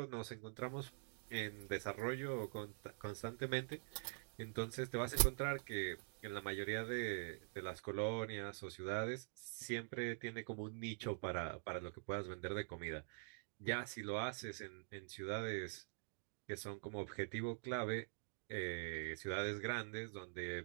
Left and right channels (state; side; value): silent; left; digital silence